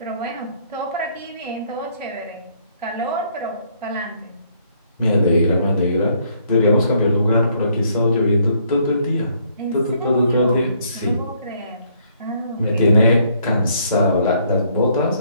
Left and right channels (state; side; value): inverted; both; correlation -0.67